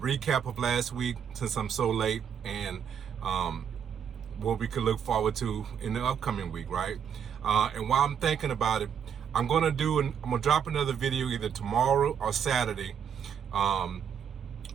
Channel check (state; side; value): quieter; left; 8.0 dB